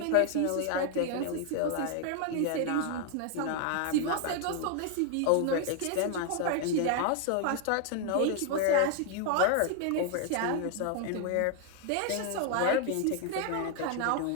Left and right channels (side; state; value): both; different; correlation 0.00